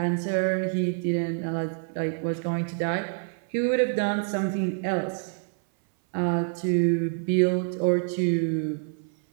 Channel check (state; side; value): silent; left; 60 dB below the other